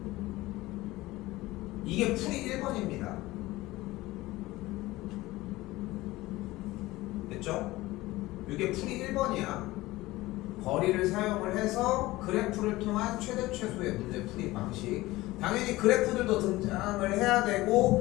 이게 풀이 1번입니다. 됐죠? 이게 풀이 1번이야. 거리를 사용을 해서 그래프를 통한 최대 최소의 문제 풀이 방식. 당연히 그래프들도 등장을 해야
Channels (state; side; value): quieter; right; 18.7 dB